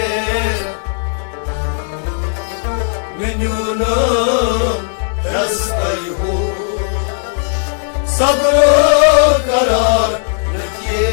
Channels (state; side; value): silent; right; digital silence